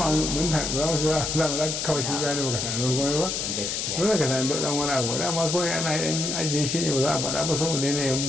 mun za mu shiga za mu kawai shi gane baka tanadar komai ba. Gaskiya. Dole ka tanadar dan wani abu. Dama kawai ana yin ajiye shi ne ba za a faɗa ba saboda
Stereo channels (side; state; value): left; noise; hiss, 2 dB below the sound